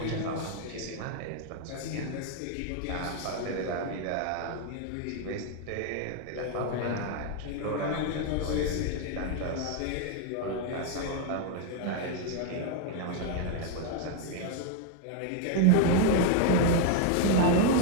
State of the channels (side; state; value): both; different; correlation 0.00